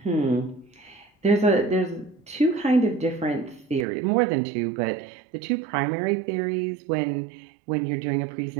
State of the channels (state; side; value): drops out; left; at 3.9 s